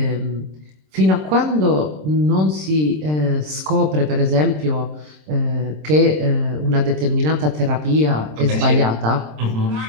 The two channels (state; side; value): late; left; 26 ms